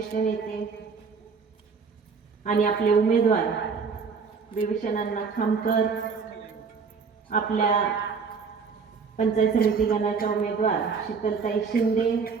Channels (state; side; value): quieter; left; 5.4 dB